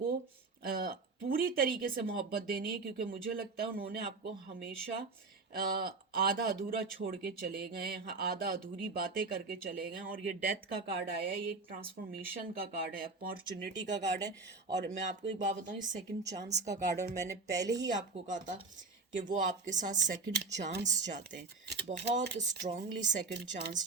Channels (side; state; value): left; quieter; 3.9 dB